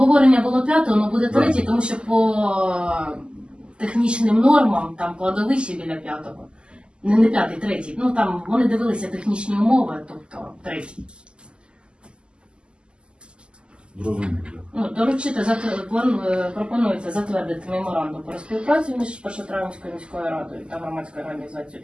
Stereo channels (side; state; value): left; late; 0.050 ms